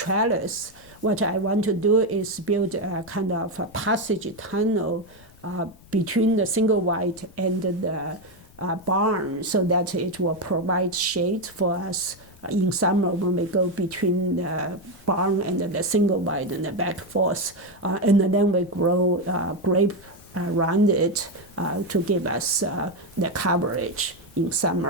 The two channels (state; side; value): noise; left; rumble, 25 dB below the sound